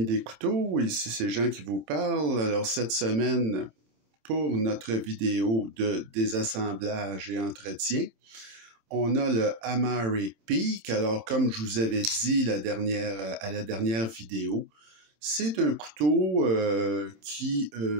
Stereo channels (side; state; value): left; late; 27 ms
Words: des couteaux, ici c'est Jean qui vous parle. Alors cette semaine, pour notre vidéo de désassemblage et entretien, on a le Amari Peak. Alors comme je vous avais dit à la dernière vidéo, c'est un couteau qui